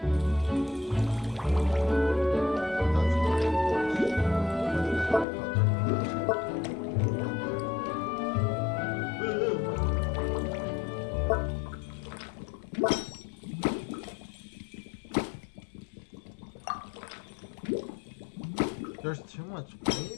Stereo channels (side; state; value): right; drops out; at 5.2 s